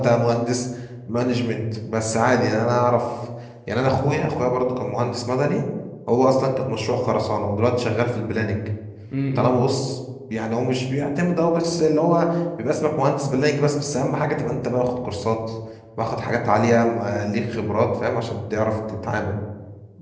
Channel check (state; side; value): identical; both; correlation 1.00